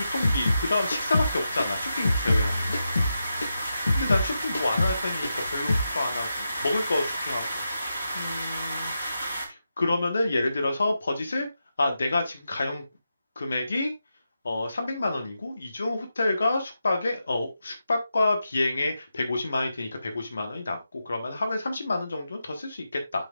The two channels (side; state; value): both; inverted; correlation -0.88